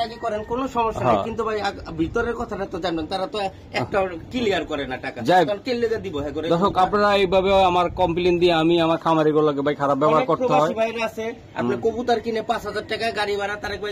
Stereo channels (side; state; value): both; identical; correlation 1.00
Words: করেন কোনো সমস্যা নেই, কিন্তু ভাই ভিতরের কথাটা তো জানেন, তারা তো একটা ক্লিয়ার করে না টাকা, কেলে দিব। দর্শক আপনারা এইভাবে আমার কমপ্লেইন দিয়ে আমি আমার খামারিগুলোকে ভাই খারাপ ব্যবহার করতে হয়। বাইরে আছে আপনি কবুতর কিনে 5000 টাকা গাড়ি ভাড়া, তারেক